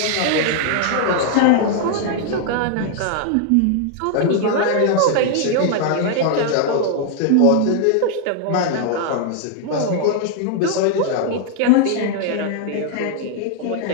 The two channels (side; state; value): both; different; correlation 0.00